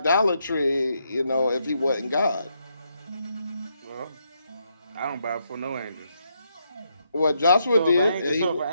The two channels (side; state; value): both; inverted; correlation -0.78